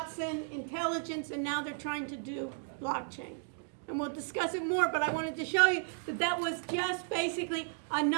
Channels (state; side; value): silent; left; 55 dB below the other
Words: Intelligence, and now they're trying to do blockchain. And we'll discuss it more, but I wanted to show you that that was just basically